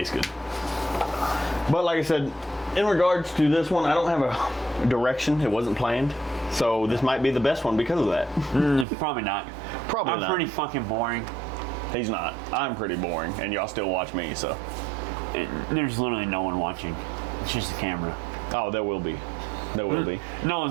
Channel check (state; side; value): drops out; left; at 8.8 s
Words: good. But like I said, in regards to this one, I don't have a direction. It wasn't planned. So this might be the best one because of that. Probably not. Probably not. I'm pretty fucking boring. He's not. I'm pretty boring, and y'all still watch me, so. There's literally no one watching. It's just the camera. Oh, there will be. There will be. No